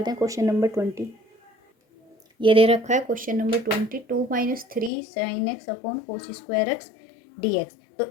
हैं क्वेश्चन नंबर 20। ये दे रखा है question number 20, 2 - 3 sin x upon cos square X D x.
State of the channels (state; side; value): drops out; right; at 4.9 s